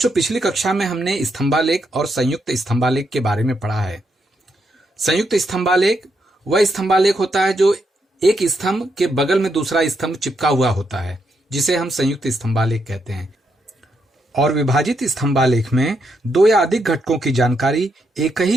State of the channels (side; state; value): both; normal; correlation 0.80